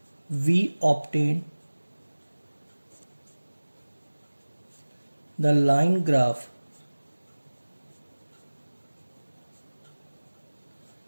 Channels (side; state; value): both; inverted; correlation -1.00